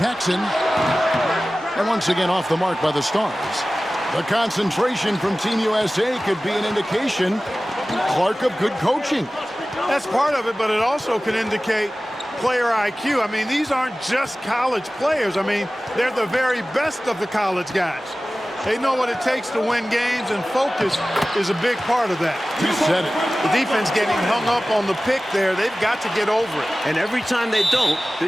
And once again off the mark by the Stars. The concentration from Team USA could be an indication, Clark, of good coaching. That's part of it, but it also can indicate player IQ. I mean, these aren't just college players. I mean, they're the very best of the college guys. They know what it takes to win games, and focus is a big part of that. You said it. The defense getting hung up on the pick there, they've got to get over it. And every time they don't,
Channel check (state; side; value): normal; both; correlation 0.97